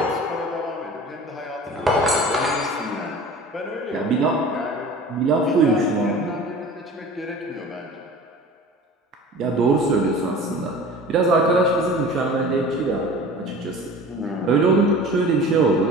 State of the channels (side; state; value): both; normal; correlation 0.40